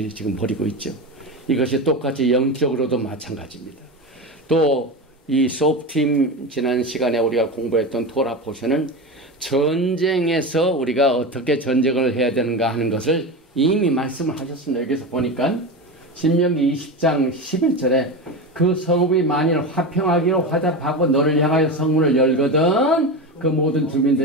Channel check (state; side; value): normal; both; correlation 0.22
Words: 지금 벌이고 있죠. 이것이 똑같이 영적으로도 마찬가지입니다. 또 이 수업팀 지난 시간에 우리가 공부했던 토라 포션은 전쟁에서 우리가 어떻게 전쟁을 해야 되는가 하는 것을 이미 말씀을 하셨습니다. 여기서 보니까 신명기 20장 11절에 그 성읍이 만일 화평하기로 화답하고 너를 향하여 성문을 열거든 그 모든